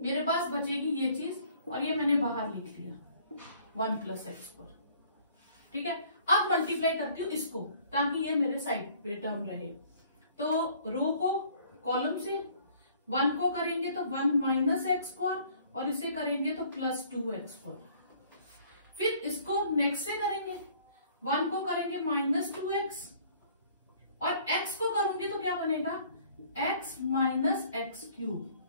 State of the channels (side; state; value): both; inverted; correlation -0.57